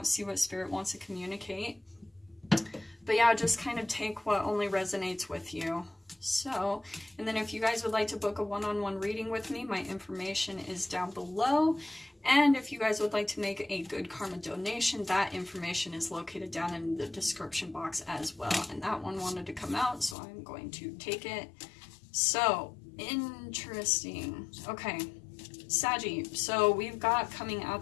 see what Spirit wants to communicate. But yeah, just kind of take what only resonates with you. So, and then if you guys would like to book a one-on-one reading with me, my information is down below. And if you guys would like to make a good karma donation, that information is located down in the description box as well. And that one wanted to come out, so I'm going to take it. So, interesting. Okay, Saggy. So we've got coming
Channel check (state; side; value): drops out; right; at 20.2 s